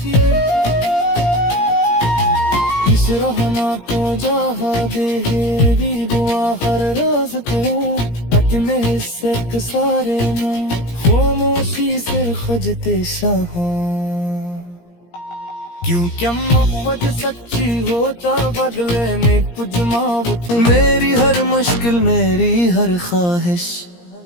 इस रहना तो जहा दे मेरी दुआ हर रोज को। अपने हिस्से के सारे में खामोशी से खजते शाह। क्यों क्या मोहब्बत सच्ची होता बदले में कुछ मावत। मेरी हर मुश्किल मेरी हर ख्वाहिश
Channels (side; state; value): right; late; 17 ms